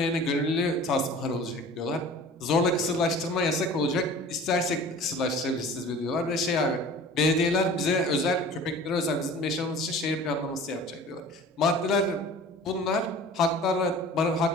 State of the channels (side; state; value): both; normal; correlation 0.43